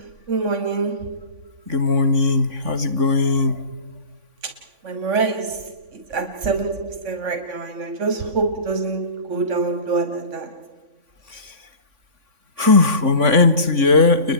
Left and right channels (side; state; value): left; late; 3.5 ms